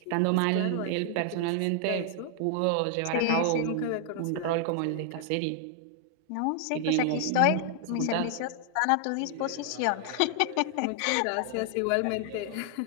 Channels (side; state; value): both; different; correlation 0.00